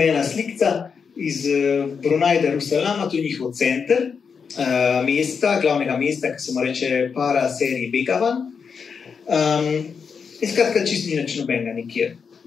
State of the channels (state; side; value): quieter; right; 6.0 dB